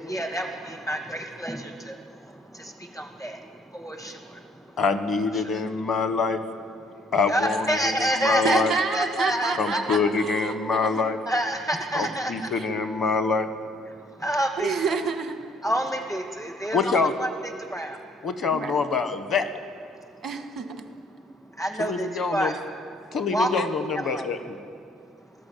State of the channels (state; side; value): normal; both; correlation 0.62